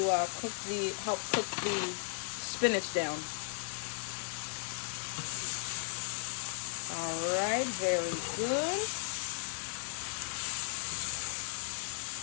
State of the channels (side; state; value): right; silent; digital silence